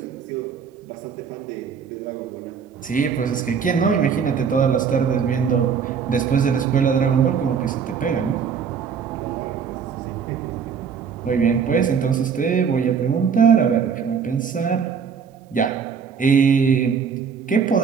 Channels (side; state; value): left; quieter; 6.6 dB